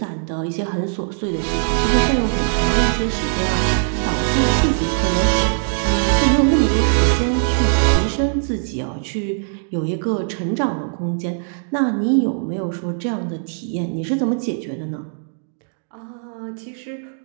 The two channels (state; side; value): silent; left; digital silence